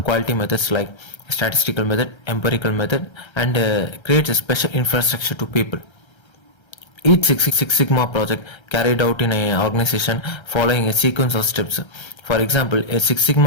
quality methods like statistical method, empirical method, and creates a special infrastructure to people. Each Six Sigma project carried out in an organization following a sequence of steps. For example, a Six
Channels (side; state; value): right; late; 1.3 ms